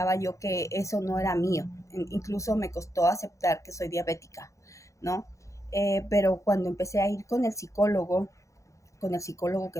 yo que eso no era mío. Incluso me costó aceptar que soy diabética, ¿no? Pero cuando empecé a ir con el psicólogo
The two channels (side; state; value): right; late; 0.15 ms